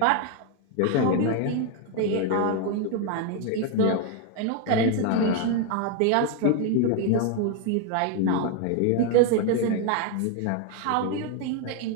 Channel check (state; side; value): different; both; correlation 0.01